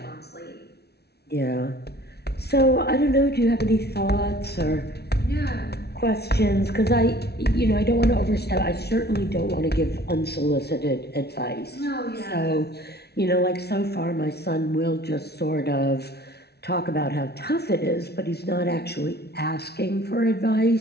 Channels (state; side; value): late; right; 0.48 ms